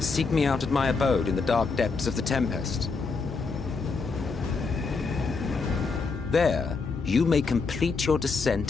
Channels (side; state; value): right; quieter; 4.5 dB